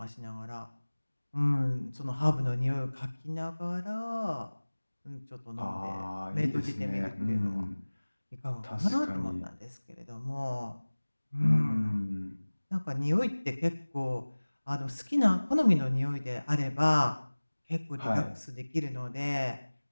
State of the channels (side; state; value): both; inverted; correlation -1.00